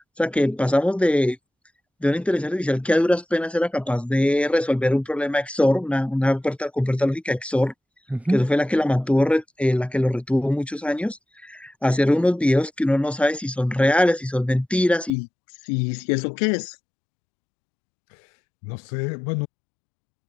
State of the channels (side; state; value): right; drops out; at 15.1 s